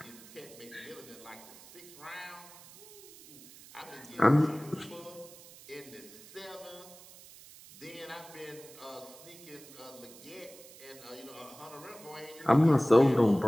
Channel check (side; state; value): right; noise; hiss, 19 dB below the sound